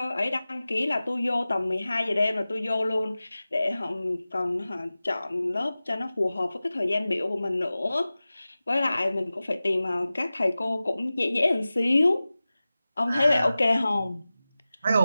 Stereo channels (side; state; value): both; inverted; correlation -0.96